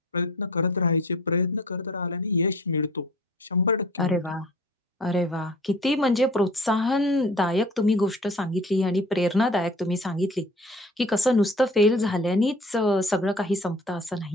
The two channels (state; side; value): normal; both; correlation 0.46